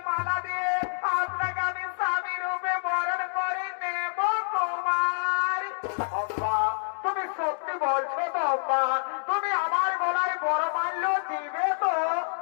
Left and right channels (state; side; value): silent; right; digital silence